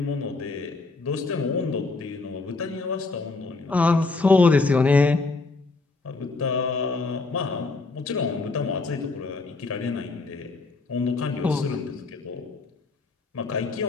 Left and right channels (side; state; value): right; quieter; 3.7 dB